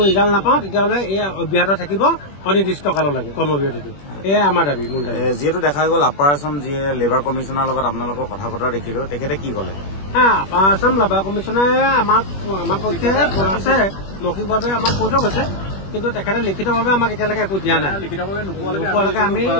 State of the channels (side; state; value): right; late; 21 ms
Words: ৰিজাল্ট নাপাওঁ তেতিয়াহ'লে এই অব্যাহত থাকিব অনিৰ্দিষ্ট কাললৈকে কৰ্মবিৰতিটো। এয়াই আমাৰ দাবী মূল দাবী। যিহেতু দেখা গ'ল আপাৰ আছাম যিয়ে লেবাৰ কমিশ্যনাৰ লগত আপোনালোকৰ কথা বতৰা দেখিলো, তেখেতে কি ক'লে? আপাৰ আছাম লেবাৰ কমিশ্যনাৰে আমাৰ পক্ষে আছে মৌখিকভাৱে আমাক কৈ থৈ গৈছে, কিন্তু তেখেতে লিখিতভাৱে আমাক এতিয়ালৈকে একো দিয়া নাই। নোপোৱালৈকে আমি